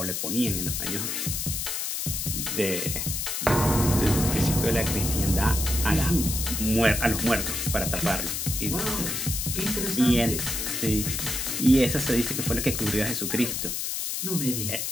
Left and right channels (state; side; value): noise; left; hiss, 2 dB below the sound